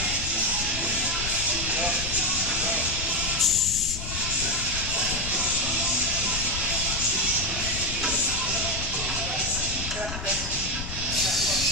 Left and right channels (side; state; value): left; noise; rumble, 7 dB below the sound